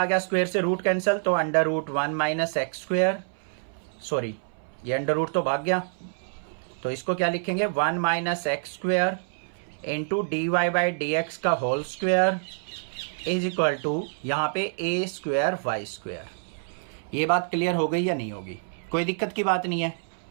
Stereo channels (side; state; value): left; silent; 60 dB below the other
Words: आ गया, स्क्वायर से रूट कैंसिल, तो under root 1 minus x square, sorry ये अंडर रूट तो भाग गया, तो इसको क्या लिखेंगे, 1 minus x square into d Y by D x का whole square is equal to, यहां पे ए स्क्वायर वाई स्क्वायर। ये बात क्लियर हो गई या नहीं होगी, कोई दिक्कत की बात नहीं है।